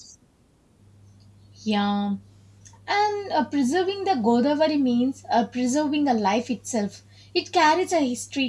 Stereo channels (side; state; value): both; identical; correlation 1.00